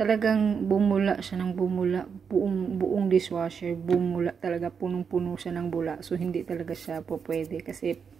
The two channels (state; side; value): quieter; left; 6.4 dB